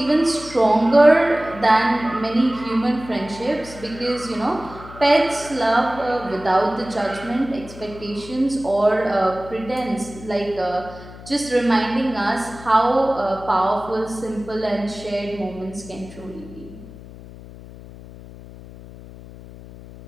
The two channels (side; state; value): left; noise; hum, 16 dB below the sound